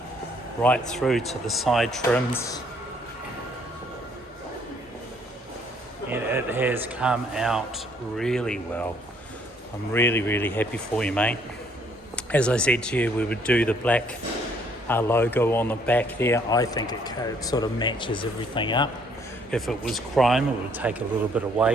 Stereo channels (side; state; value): both; normal; correlation 0.64